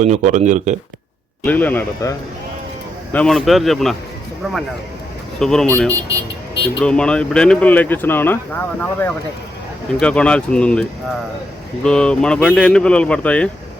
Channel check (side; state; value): both; normal; correlation 0.81